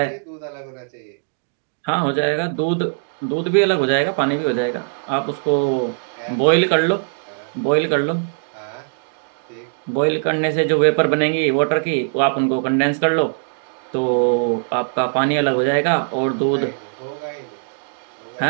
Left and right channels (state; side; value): silent; left; digital silence